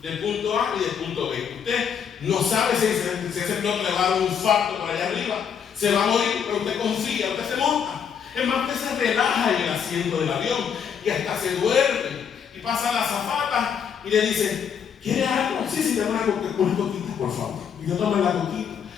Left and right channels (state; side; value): quieter; right; 7.5 dB